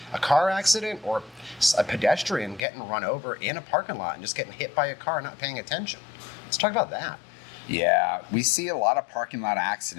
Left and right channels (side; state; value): right; drops out; at 2.6 s